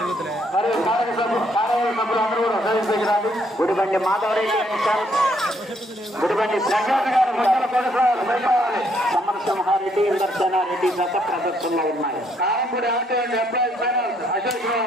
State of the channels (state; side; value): normal; both; correlation 0.70